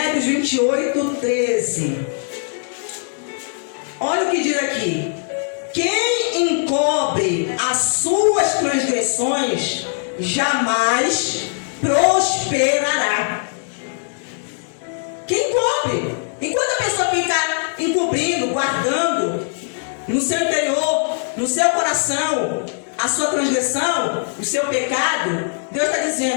28, 13. Olha o que diz aqui. Quem encobre as suas transgressões jamais prosperará. Quem encobre? Enquanto a pessoa fica encobrindo, guardando no seu interior, no seu coração, a sua transgressão, o seu pecado, Deus está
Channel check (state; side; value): silent; right; digital silence